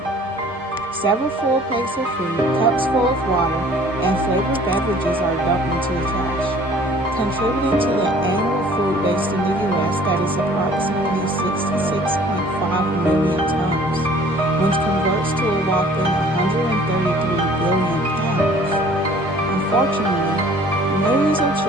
Several full plates of food, cups full of water, and flavored beverages are dumped into the trash, contributing to the annual food waste in the U.S. that is approximately 66.5 million tons, which converts to a whopping 133 billion pounds. Unfortunately, millions of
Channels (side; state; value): both; normal; correlation 0.52